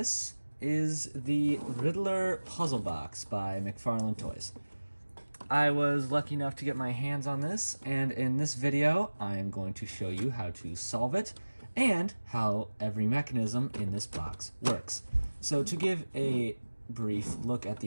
is the Riddler puzzle box by Mcfarlane Toys. I was lucky enough to get my hands on this, and in this video, I am going to show you how to solve it and how every mechanism in this box works. So to give a brief look at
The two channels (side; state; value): both; inverted; correlation -1.00